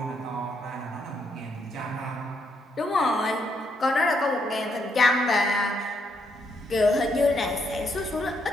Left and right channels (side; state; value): both; normal; correlation 0.76